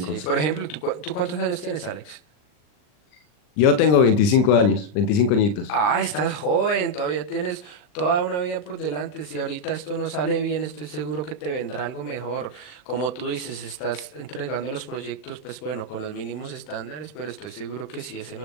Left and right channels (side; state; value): right; late; 39 ms